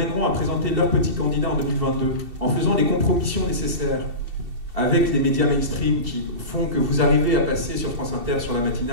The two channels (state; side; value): late; left; 2.7 ms